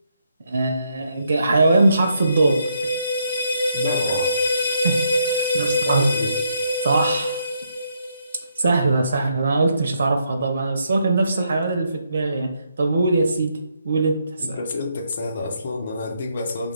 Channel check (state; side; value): inverted; both; correlation -0.76